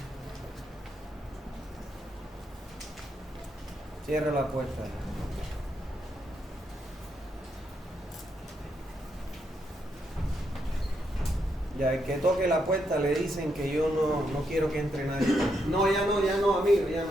Cierra la puerta. Ya, el que toque la puerta le dicen que yo no quiero que entre nadie. No, ya no, amigo, ya.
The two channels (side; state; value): both; normal; correlation 0.79